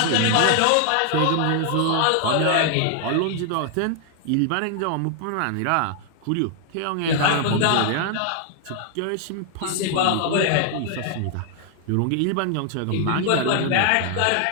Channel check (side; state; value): both; different; correlation 0.00